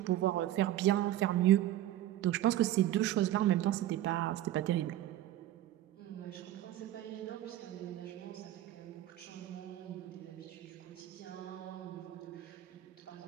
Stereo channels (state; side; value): quieter; left; 13.5 dB